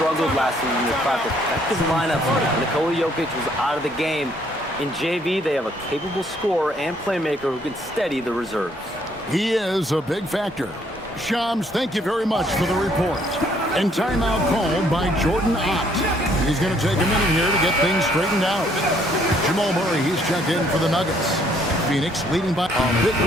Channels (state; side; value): normal; both; correlation 0.66